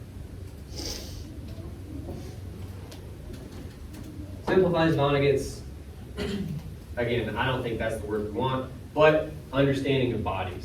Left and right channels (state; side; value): identical; both; correlation 1.00